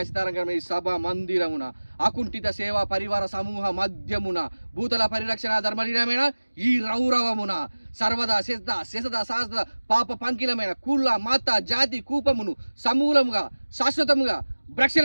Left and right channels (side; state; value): both; inverted; correlation -1.00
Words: సభ మందిరమున అకుంఠిత సేవా పరివార సమూహ మధ్యమున భూతల పరిరక్షణ ధర్మలీనమైన ఈ రౌరవమున సర్వదా శశద శాస్త్ర పాప పంకిలమైన కుల మత జాతి కూపమును సమూలముగా శాశ్వతముగా